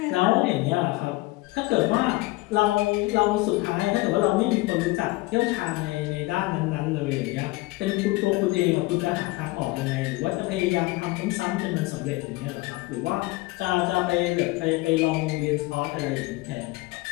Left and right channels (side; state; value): right; quieter; 21.1 dB